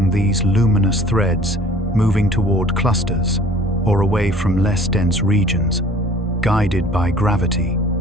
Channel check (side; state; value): both; normal; correlation 0.50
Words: these luminous threads, moving toward clusters or away from less dense regions, guided by gravity,